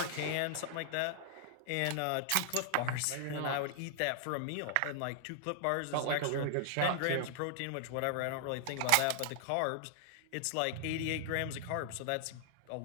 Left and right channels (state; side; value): different; both; correlation 0.00